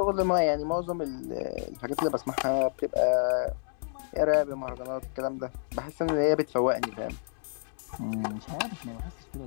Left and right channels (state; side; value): silent; right; digital silence